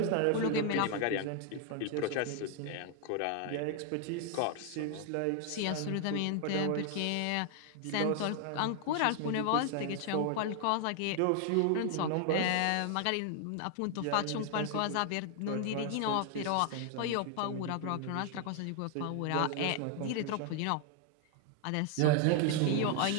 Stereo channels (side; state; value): both; different; correlation 0.00